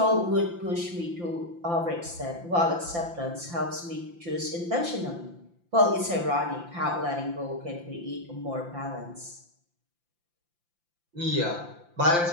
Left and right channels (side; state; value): left; late; 5.8 ms